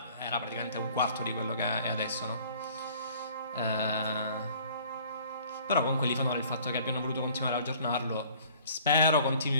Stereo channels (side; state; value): both; inverted; correlation -0.53